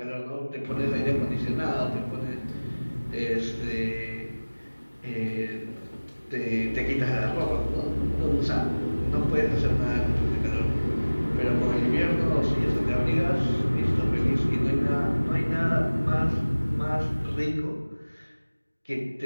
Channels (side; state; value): both; inverted; correlation -1.00